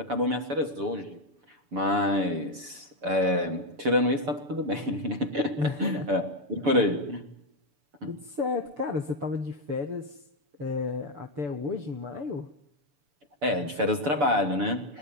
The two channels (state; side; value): late; left; 6.9 ms